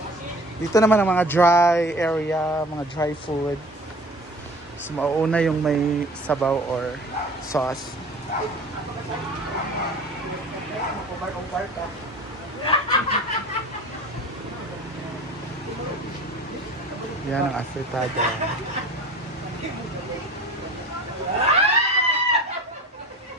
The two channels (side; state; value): both; normal; correlation 0.41